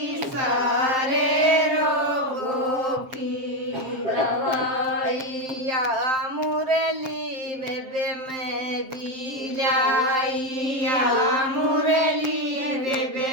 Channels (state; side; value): late; left; 7.5 ms